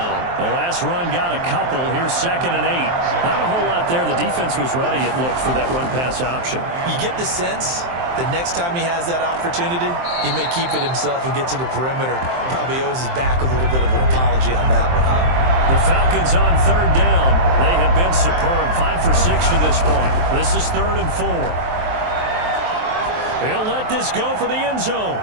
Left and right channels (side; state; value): left; late; 23 ms